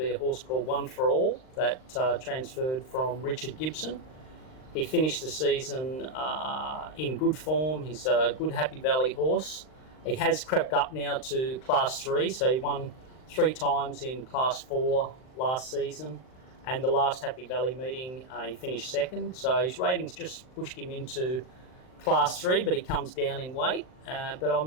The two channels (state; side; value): late; right; 39 ms